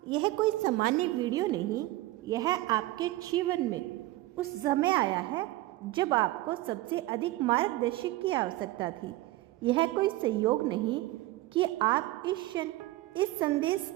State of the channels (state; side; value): quieter; left; 17.9 dB